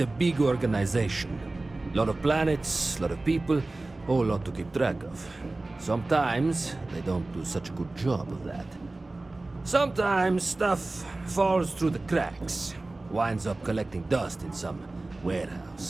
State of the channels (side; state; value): left; quieter; 3.0 dB